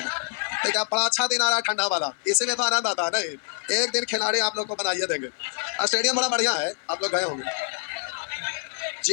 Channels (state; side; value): silent; right; 61 dB below the other